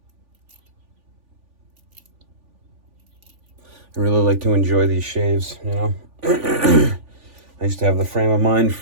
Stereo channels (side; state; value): left; late; 3.5 ms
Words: I really like to enjoy these shaves, you know. I used to have the frame of mind